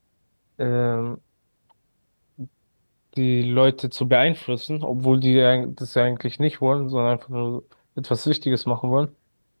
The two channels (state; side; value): inverted; both; correlation -1.00